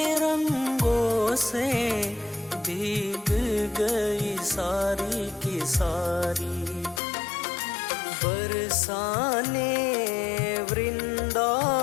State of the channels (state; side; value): drops out; right; at 7.0 s